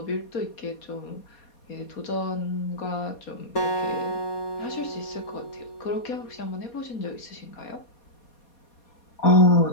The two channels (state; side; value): late; right; 4.2 ms